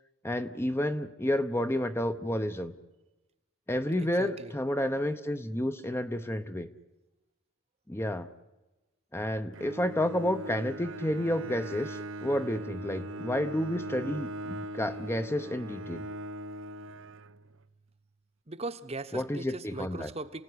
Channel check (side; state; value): both; normal; correlation 0.79